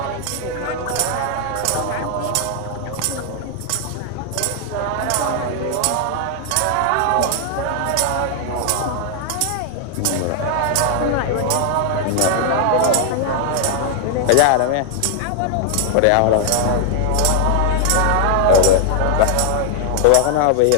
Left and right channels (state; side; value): different; both; correlation 0.00